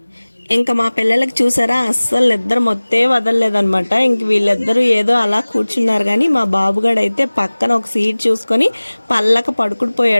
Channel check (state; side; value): inverted; both; correlation -1.00